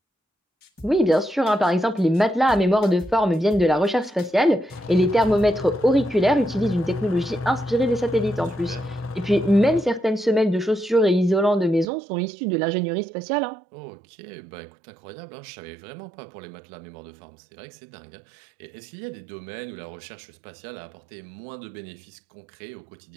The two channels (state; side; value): drops out; left; at 11.9 s